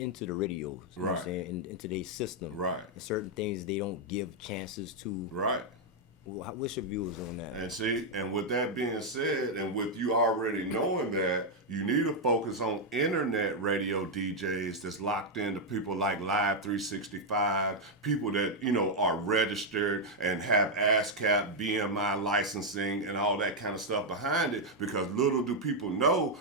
the radios. You know what I'm saying? Into their system. Right. And certain things they don't give chances to. Right. What's your views on that? And see, and with that being said, and with you already knowing that, you need to focus on internet radio DJs that's locked into people like Live 365, people that, are registered and have ASCAP, BMI licensing and all that kind of stuff behind it, because little do people know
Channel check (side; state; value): both; normal; correlation -0.01